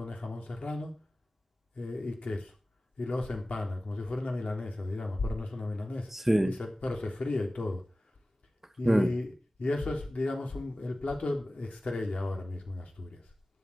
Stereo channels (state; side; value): normal; both; correlation 0.96